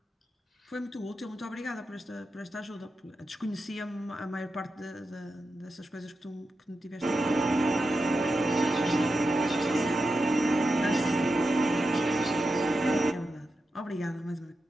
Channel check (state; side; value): normal; both; correlation 0.90